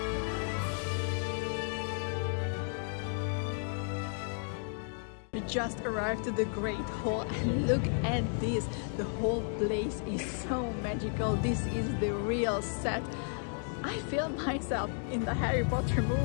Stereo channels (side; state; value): right; silent; 56 dB below the other